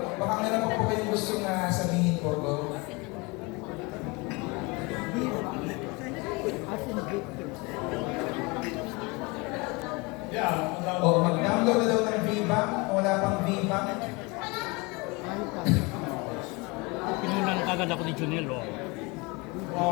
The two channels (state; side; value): quieter; right; 26.8 dB